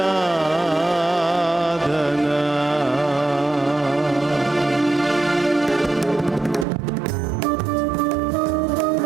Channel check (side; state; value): left; drops out; at 6.7 s